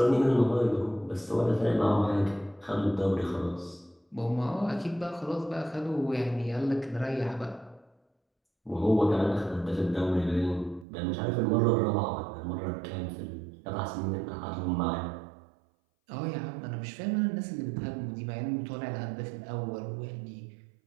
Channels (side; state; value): left; drops out; at 10.9 s